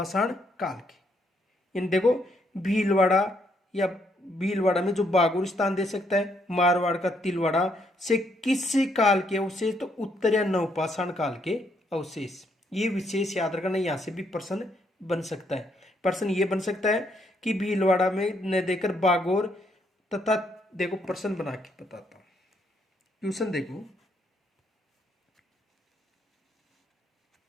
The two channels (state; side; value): normal; both; correlation 0.73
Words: काल के। इन देखो भीलवाड़ा या भीलवाड़ा में जो बागोर स्थान दे सकता है, मारवाड़ का तिलवाड़ा से किस काल के अवशेष? तो उत्तर या नवपाषाण काल के अवशेष। ये विशेष याद रखना, यहां से भी प्रश्न बन सकता है। प्रश्न ये बन सकता है कि भीलवाड़ा में न देकर बागोर तथा देखो प्रश्न बना के बताता हूं। क्वेश्चन देखो,